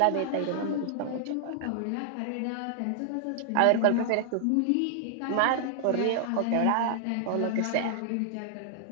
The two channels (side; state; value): both; different; correlation 0.00